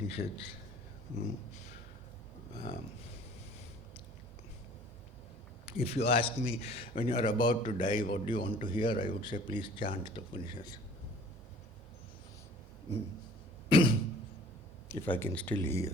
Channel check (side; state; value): both; normal; correlation 0.50